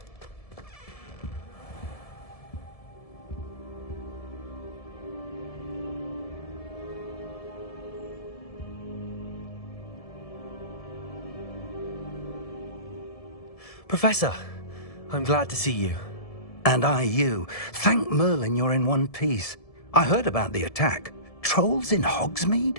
Professor, I'm glad to see you. And I you. Thank Merlin you're in one piece. I heard about the attack. Trolls in Hogsmeade?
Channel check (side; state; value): right; late; 1.7 ms